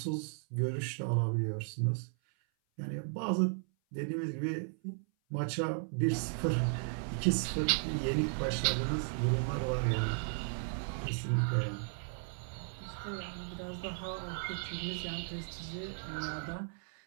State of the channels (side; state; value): left; silent; 54 dB below the other